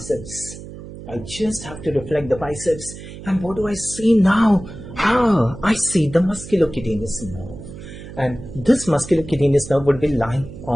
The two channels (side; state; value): right; noise; hum, 13 dB below the sound